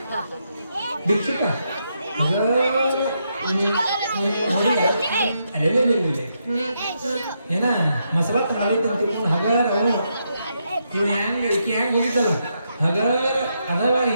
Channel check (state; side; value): inverted; both; correlation -0.80